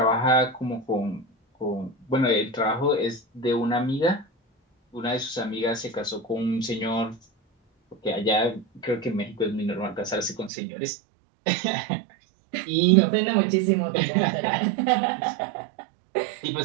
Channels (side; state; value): left; drops out; at 10.5 s